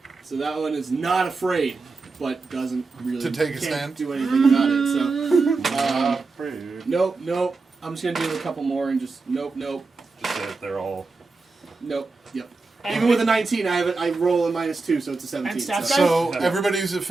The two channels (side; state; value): left; quieter; 3.9 dB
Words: So that one is not afraid, but doesn't really To take a can't stand? do anything about it. So nope. I'm just gonna do a couple more and just nope. Just say that they're all. Yep. And Even with a 19, I roll a minus 2, so it's a 17. And staff so guy? So everybody who's